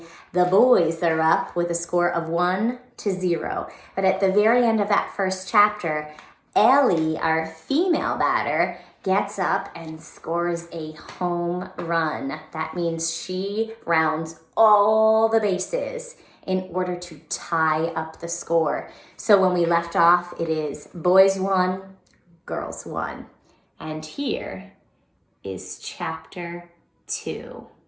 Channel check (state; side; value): identical; both; correlation 1.00